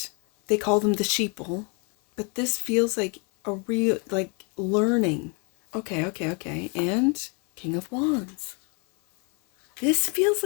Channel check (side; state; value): right; quieter; 34.7 dB